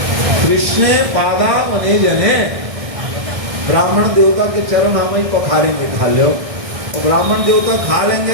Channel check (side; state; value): left; late; 1.6 ms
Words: कृष्ण पादा मने जने, ब्राह्मण देवता के चरण हम ही पखारेंगे, खा लो। और ब्राह्मण देवता खा लेंगे